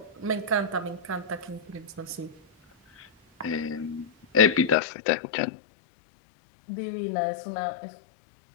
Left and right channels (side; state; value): right; drops out; at 4.8 s